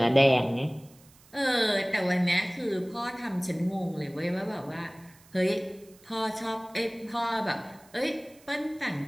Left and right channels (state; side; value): noise; right; hiss, 27 dB below the sound